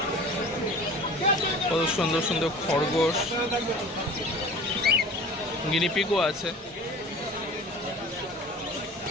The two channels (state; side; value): normal; both; correlation 0.41